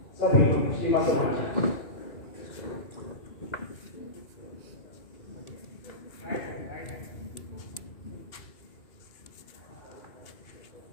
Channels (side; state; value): right; late; 2.8 ms